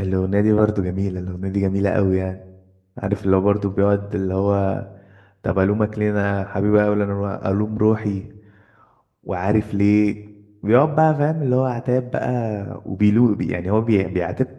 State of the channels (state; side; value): identical; both; correlation 1.00